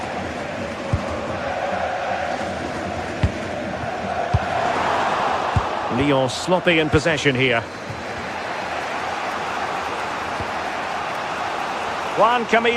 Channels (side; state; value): both; identical; correlation 1.00